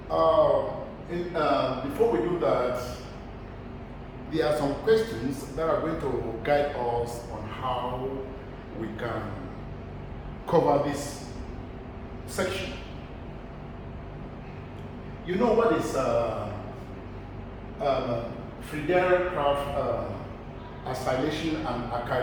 Before we do that, there are some questions that are going to guide us on how we can cover this section. You know what is Friedel acylation and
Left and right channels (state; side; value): identical; both; correlation 1.00